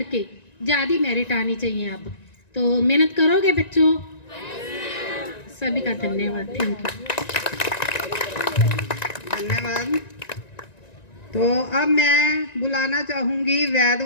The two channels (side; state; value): right; late; 1.9 ms